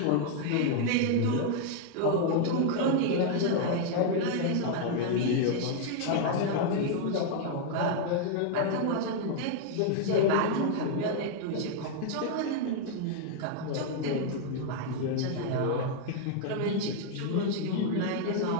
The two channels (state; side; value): different; both; correlation 0.00